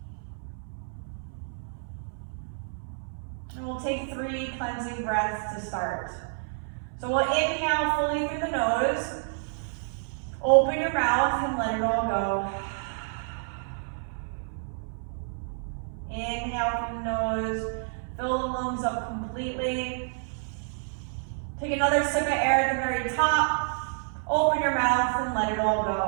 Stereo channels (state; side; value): silent; left; 59 dB below the other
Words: And we'll take 3 cleansing breaths to start. So we'll inhale fully through the nose. Open your mouth and let it all go. Inhale through the nose, fill the lungs up completely. Take another sip of air at the very top. Open your mouth and let it all